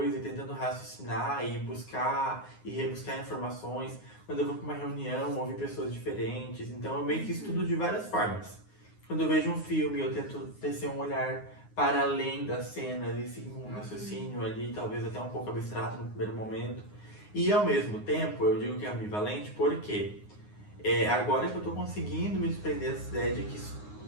e tentando raciocinar e buscar e rebuscar informações. Quando eu vou para uma reunião, ouvir pessoas diferentes. Então eu meio que estudo de várias formas. Quando eu vejo um filme, eu tento tecer um olhar para além das cenas e seguir um raciocínio ali, talvez até um pouco abstrato no primeiro momento. E ao mesmo tempo, eu digo que é ambivalente porque agora que eu tô conseguindo me desprender dessa ideia de que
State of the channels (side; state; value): right; late; 9.6 ms